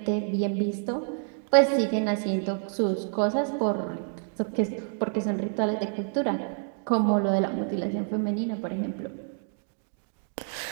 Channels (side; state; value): left; silent; 59 dB below the other